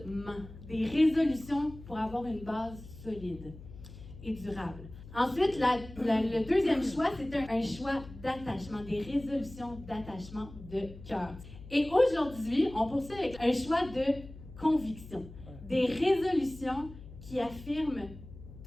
des résolutions pour avoir une base solide et durable. Ensuite, le deuxième choix, c'est un choix d'attachement, des résolutions d'attachement de cœur. Et aujourd'hui, on poursuit avec un choix de conviction, des résolutions qui affirment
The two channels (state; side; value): noise; left; hum, 16 dB below the sound